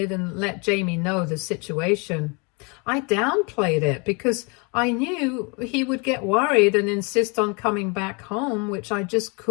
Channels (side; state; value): right; quieter; 31.7 dB